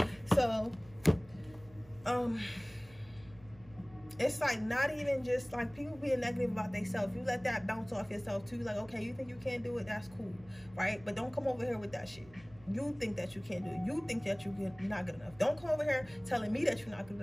So it's like not even just like people being negative about themselves. You let that bounce off yourself too. Like, okay, you think you can't do it, that's cool, right? But don't come over here with that shit. You think that you can't do it. You think that you're not good enough. Don't come over here telling me that you're not good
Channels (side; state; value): right; noise; hum, 23 dB below the sound